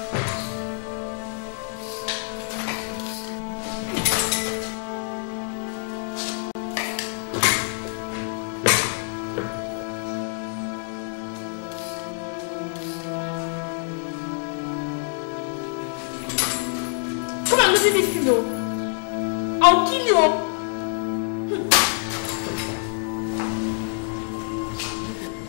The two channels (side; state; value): right; silent; digital silence